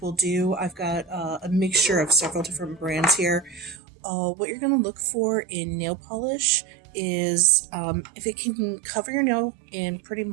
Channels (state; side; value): drops out; left; at 3.8 s